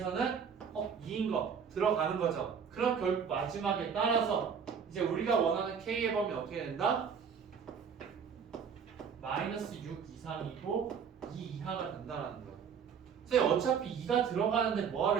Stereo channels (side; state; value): left; quieter; 6.8 dB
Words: 2인 거 들어가는 거죠. 그럼 결국 마지막에 따라서 이제 우리가 원하는 K의 범위 어떻게 된다? 마이너스 6 이상이고 2 이하가 된다는 거예요. 선생님 어차피 2가 들어가는데